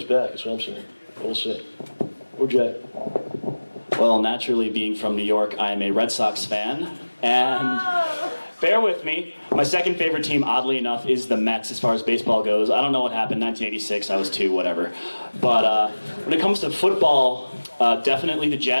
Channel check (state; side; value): inverted; both; correlation -1.00